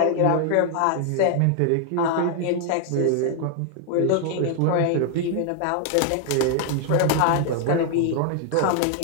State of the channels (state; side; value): different; both; correlation 0.00